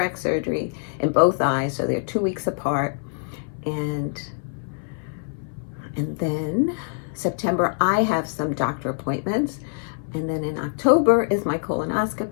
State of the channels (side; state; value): right; silent; 61 dB below the other